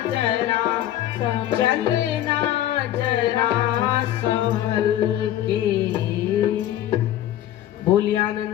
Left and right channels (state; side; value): quieter; right; 12.5 dB